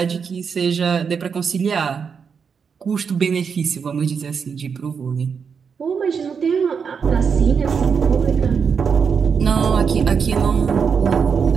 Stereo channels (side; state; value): left; quieter; 6.3 dB